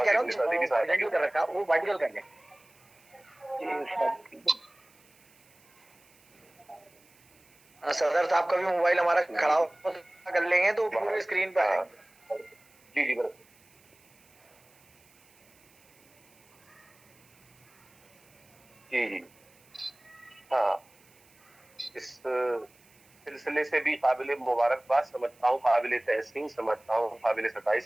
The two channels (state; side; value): noise; right; hiss, 29 dB below the sound